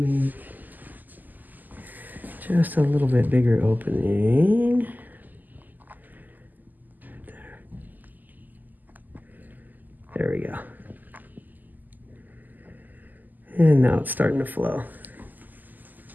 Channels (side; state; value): left; late; 0.085 ms